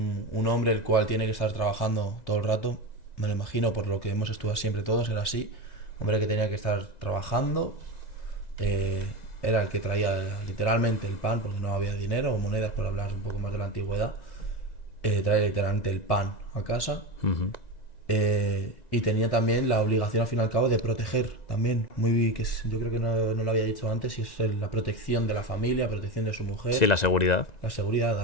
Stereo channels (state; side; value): late; right; 2.0 ms